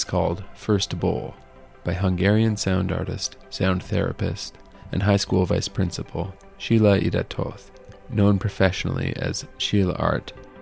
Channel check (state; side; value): identical; both; correlation 1.00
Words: called First Bowl by Hungarian sound artist, sound therapist, and high school vice principal Sheila Idatoth, known professionally as ChillArt.